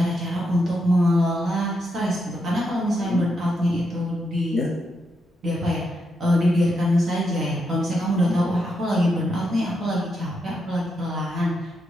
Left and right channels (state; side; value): normal; both; correlation 0.82